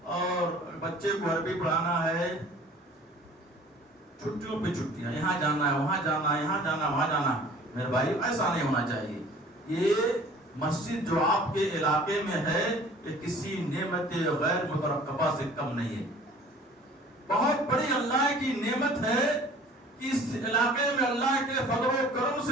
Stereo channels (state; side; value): normal; both; correlation 0.49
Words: اور بچے کو عربی پڑھانا ہے، چھٹیوں پہ چھٹیاں، یہاں جانا ہے، وہاں جانا ہے، یہاں جانا ہے، وہاں جانا. میرے بھائی ایسا نہیں ہونا چاہیے. یہ مسجد جو آپ کے علاقے میں ہے یہ کسی نعمت غیر مترقبہ سے کم نہیں ہے. بہت بڑی اللہ کی نعمت ہے کہ اس علاقے میں اللہ کے فضل و کرم